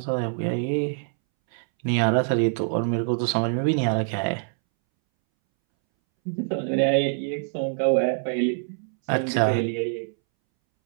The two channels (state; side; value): silent; left; 62 dB below the other